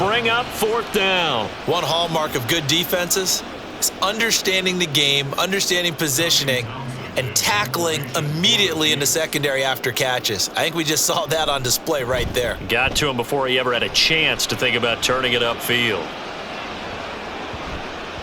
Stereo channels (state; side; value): identical; both; correlation 1.00